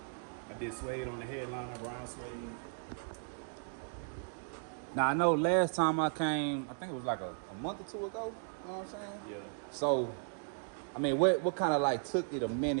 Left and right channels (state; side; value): silent; left; digital silence